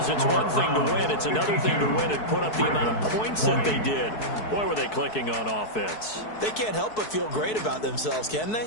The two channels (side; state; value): right; late; 4.6 ms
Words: it's one thing to win. It's another thing to win and put up the amount of points that they did. Boy, were they clicking on offense. They can't help but feel great about themselves, can